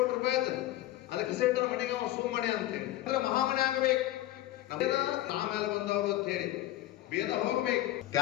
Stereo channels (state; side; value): quieter; right; 15.1 dB